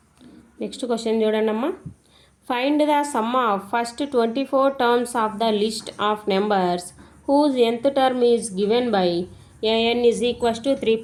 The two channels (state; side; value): identical; both; correlation 1.00